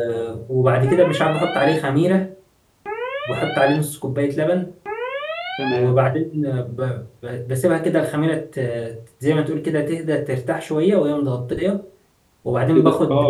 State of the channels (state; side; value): identical; both; correlation 1.00